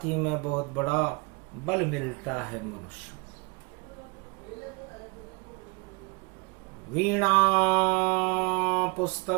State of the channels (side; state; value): left; quieter; 29.5 dB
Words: ही में बहुत बड़ा बल मिलता है मनुष्य। वीणा